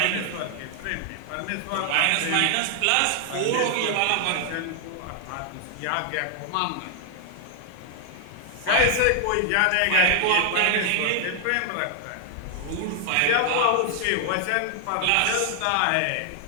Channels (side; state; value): both; different; correlation 0.00